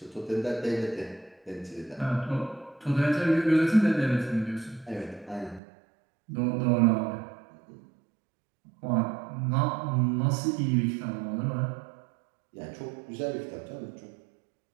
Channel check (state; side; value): drops out; left; at 5.6 s